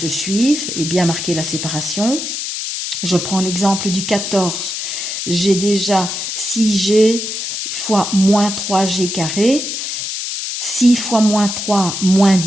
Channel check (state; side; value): noise; left; hiss, 4 dB below the sound